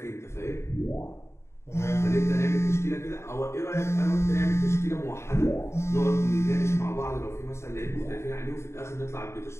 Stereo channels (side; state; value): right; late; 0.13 ms